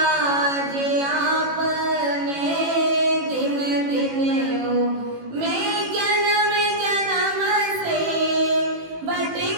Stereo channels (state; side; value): late; left; 18 ms